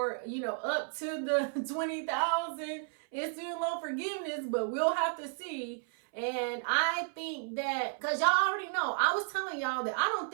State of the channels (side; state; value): left; silent; 56 dB below the other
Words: up to the $20,000 in student loan forgiveness, but we'll have to see. And I think that, because y'all already know, I was telling y'all that I don't